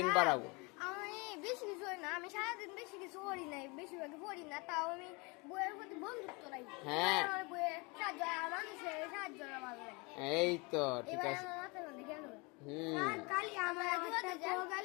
বাড়াবো। আমি বেশি কিছু হয় না, আমি সারাদিন বেশি কিছু করি নাই, বেশিরভাগ পড়ি না, তাও আমি বইয়ের প্রতি বন্ধুত্ব রাখি। হ্যাঁ, বইয়ে সাহায্য, মানুষের সাহায্য ভালো লাগে। এই তো ঠিক আছে। কালি আমার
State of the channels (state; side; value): quieter; right; 28.2 dB